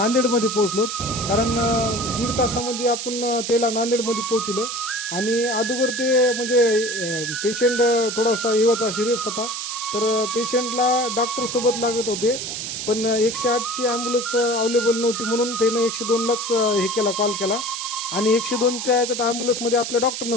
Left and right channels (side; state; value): right; noise; hiss, 5 dB below the sound